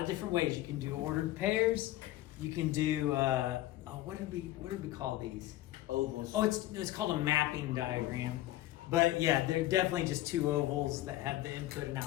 of different ways. You can do ordered pairs. You can do what did we call these? Ovals. Oh, it's called a mapping diagram. But yeah, they're definitely just two ovals that have the input and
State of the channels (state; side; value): quieter; right; 15.6 dB